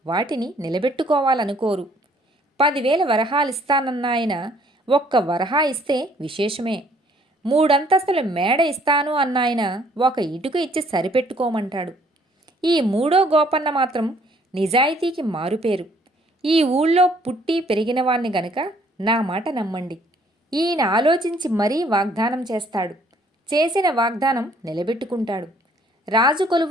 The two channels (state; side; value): normal; both; correlation 0.62